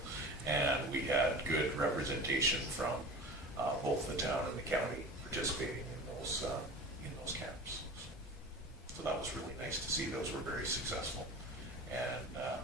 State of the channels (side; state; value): both; normal; correlation 0.35